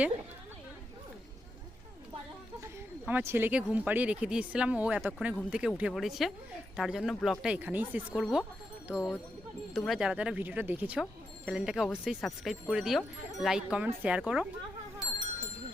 আমার ছেলেকে ঘুম পাড়িয়ে রেখে দিয়েছিলাম, ও এতক্ষণে ঘুম থেকে উঠে পড়েছে, তার জন্য ব্লগটা এখানেই শেষ করব। তো তোমরা যারা যারা ভিডিওটা দেখেছো চ্যানেলটাকে অবশ্যই সাবস্ক্রাইব করে দিও, লাইক কমেন্ট শেয়ার করো।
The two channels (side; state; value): both; normal; correlation 0.84